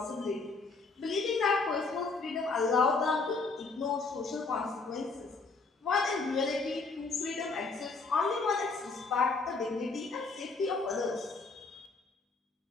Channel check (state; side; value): quieter; right; 4.1 dB